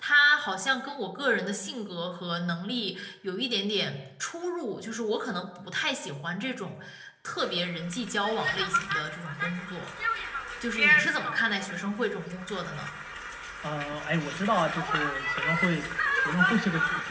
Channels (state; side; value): identical; both; correlation 1.00